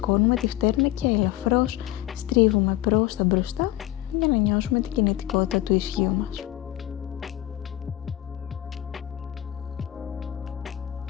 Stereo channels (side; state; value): right; quieter; 14.8 dB